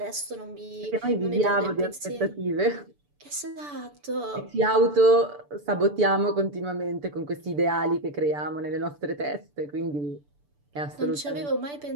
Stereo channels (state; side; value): late; left; 6.9 ms